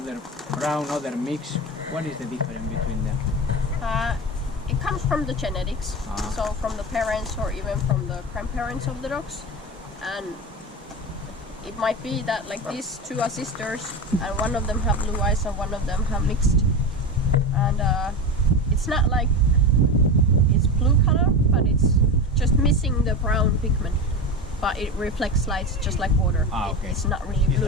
brown, other mix. What is the difference between them? It comes from the genetics, so from the parents or even from the grandparents of the dogs, and it might be that like these two are sisters and one of them have blue eyes and one of them have mixed, and it's not like it's blue color, but it's just missing the brown pigment, but it reflects lights just like water. Okay. It's not really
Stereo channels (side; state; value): both; normal; correlation 0.23